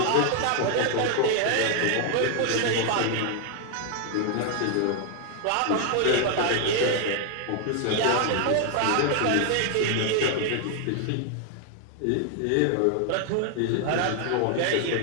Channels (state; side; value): different; both; correlation 0.00